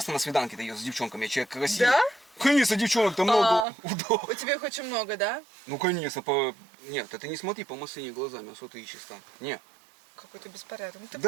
на свиданке-то езжу с девчонками, я человек красивый. Да? Конечно, девчонок-то много. Да. У тебя их очень много, да? Ну, конечно, Нет, ты не смотри по машине глазами, а что ты ищешь там? Не. Какой-то беспорядок. Ну, ты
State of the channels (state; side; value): drops out; left; at 3.7 s